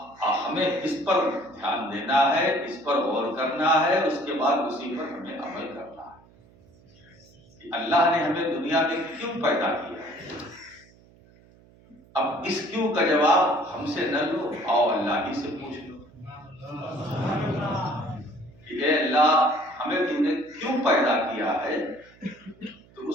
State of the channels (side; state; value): right; noise; hum, 27 dB below the sound